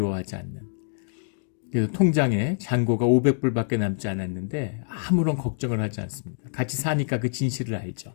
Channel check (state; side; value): silent; right; digital silence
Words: 않는. 그래서 통장에 잔고가 500불밖에 남지 않았는데 아무런 걱정을 하지 않습니다. 같이 사니까 그 진실을 알죠.